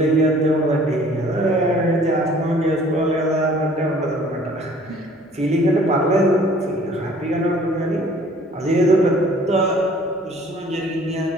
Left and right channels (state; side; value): normal; both; correlation 0.54